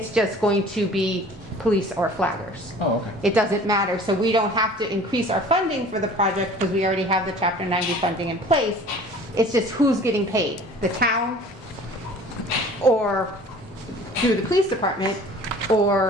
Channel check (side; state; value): both; normal; correlation 0.47